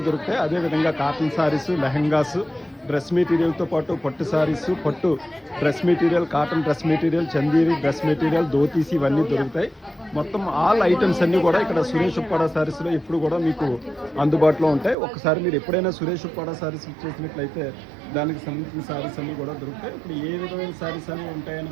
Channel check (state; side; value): drops out; left; at 15.0 s